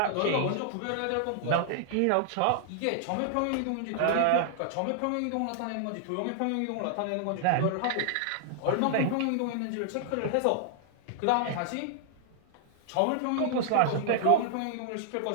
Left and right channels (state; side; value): different; both; correlation -0.01